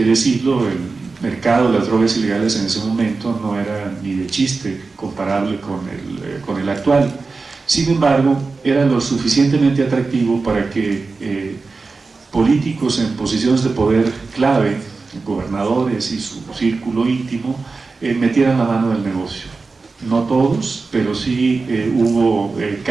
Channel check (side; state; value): left; quieter; 4.1 dB